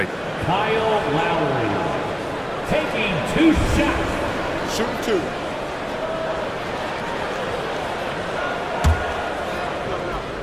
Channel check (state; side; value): identical; both; correlation 1.00